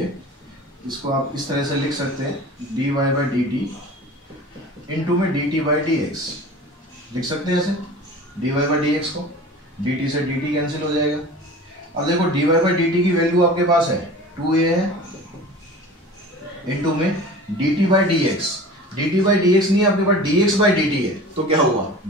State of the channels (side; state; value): both; normal; correlation 0.39